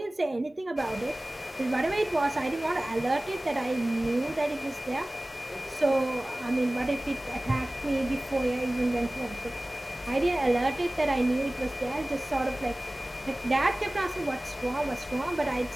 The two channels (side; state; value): both; normal; correlation 0.98